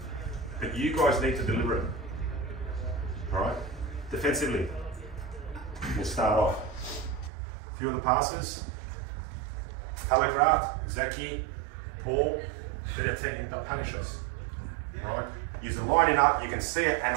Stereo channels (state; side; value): drops out; left; at 7.3 s